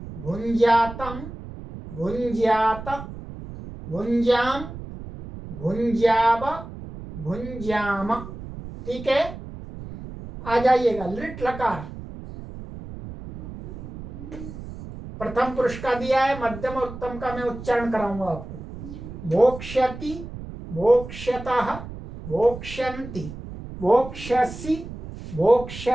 भुंज्यातम भुंज्यात भुंज्याम भुंज्याव भुंज्याम। ठीक है, आ जाइएगा लिट लकार। प्रथम पुरुष का दिया है, मध्यम और उत्तम का मैं उच्चारण कराऊंगा आपको। भोक्ष्यति भोक्ष्यतः भोक्ष्यन्ति भोक्ष्यसि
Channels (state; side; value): noise; right; rumble, 12 dB below the sound